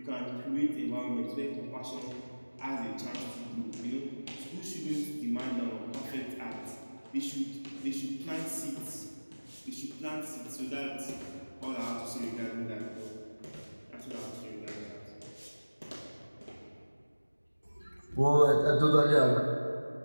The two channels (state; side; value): inverted; both; correlation -1.00